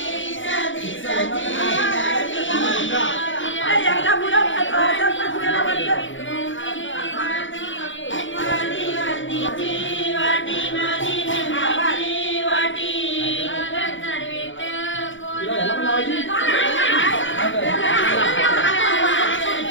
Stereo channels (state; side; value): late; right; 0.56 ms